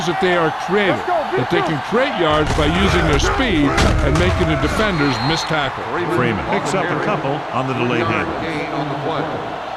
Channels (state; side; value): identical; both; correlation 1.00